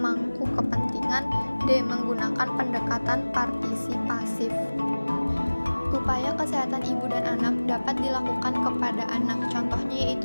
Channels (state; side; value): inverted; both; correlation -1.00